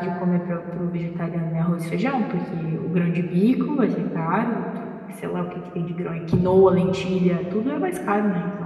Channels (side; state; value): both; identical; correlation 1.00